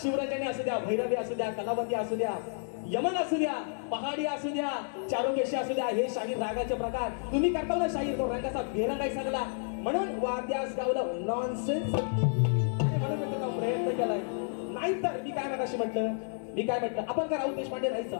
शिवराजाने असू द्या, भैरवी असू द्या, कलावती असू द्या, यमन असू द्या, पहाडी असू द्या, चारुकेशी असू द्या, हे शाहीर रागाचे प्रकार तुम्ही करता ना. शाहीर तो रंगाचा बेरंगाई सांगला म्हणून वाद्यास गावलं नॉनसेन्स. म्हणून मी तुला प्रयत्न केलाय. नाही तर मी काय म्हटलं आपण का राऊत देशपांडे राहायचं,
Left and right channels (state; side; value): silent; right; 57 dB below the other